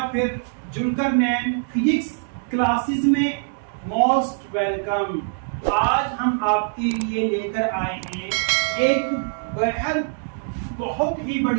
फिर जुलकर नैन फिजिक्स क्लासेस में मोस्ट वेलकम। आज हम आपके लिए लेकर आए हैं एक बेहद बहुत ही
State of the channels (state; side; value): silent; left; digital silence